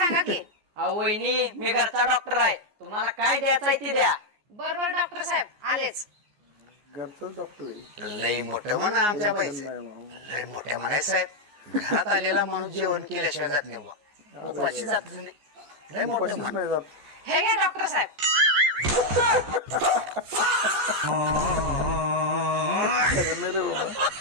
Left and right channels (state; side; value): late; left; 14 ms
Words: की. अहो वहिनी, मी घरचा डॉक्टर आहे, तुम्हाला काय द्यायचंय ते द्या. बर बर डॉक्टर साहेब आलेच. घरचाच डॉक्टर आहे. लय मोठं म्हणा आमच्या पैसे, लय मोठ्या म्हणाय साहेब. घरात आलेला माणूस जेवण केल्याशिवाय जात नाही बुवा, उपाशी जात नाही. लय मोठं उपाशीच म्हण. नाही जात. हे घ्या डॉक्टर साहेब. खरं नाही रे बाबा.